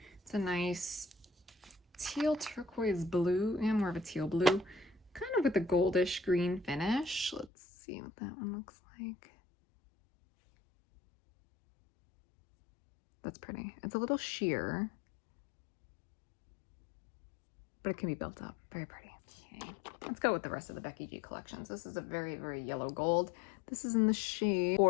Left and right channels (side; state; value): right; drops out; at 7.5 s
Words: It's a nice teal turquoise blue, and more of a teal blue, kind of with a goldish green finish. Let's see what that one looks like. That's pretty. It's a little sheer, but it can be built up. Very pretty. Okay, let's go with the rest of the Becky G collections. This is a very, very yellow gold. This is in the shade